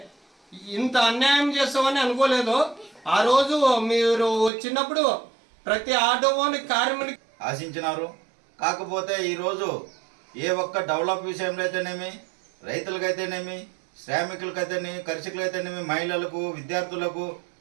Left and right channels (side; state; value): left; drops out; at 4.5 s